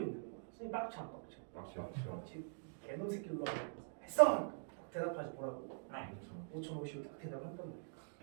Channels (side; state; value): left; silent; digital silence